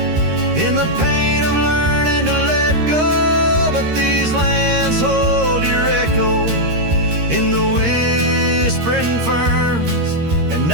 in the pain of learning to let go. But these lands hold your echo in the whispering ferns, and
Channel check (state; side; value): late; left; 13 ms